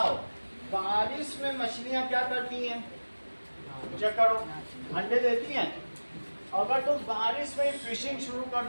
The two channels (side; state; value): both; inverted; correlation -1.00